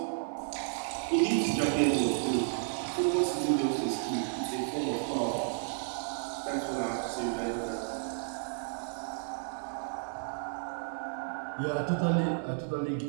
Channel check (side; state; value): left; silent; 56 dB below the other